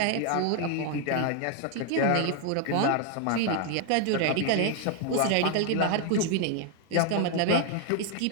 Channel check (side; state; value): both; different; correlation 0.00